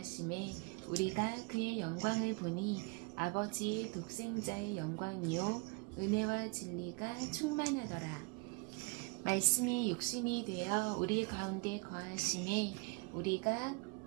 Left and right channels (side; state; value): left; quieter; 30.2 dB